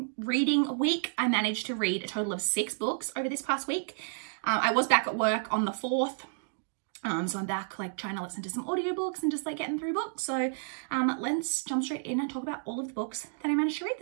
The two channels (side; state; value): left; silent; digital silence